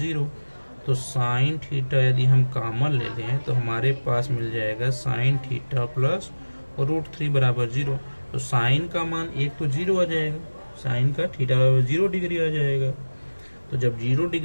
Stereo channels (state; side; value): inverted; both; correlation -1.00